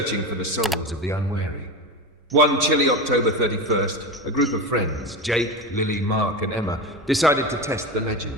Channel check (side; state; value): both; normal; correlation 0.22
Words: for the souls of the unwary. One chilly October 31st, a group of friends, Jake, Lily, Mark, and Emma, decided to test the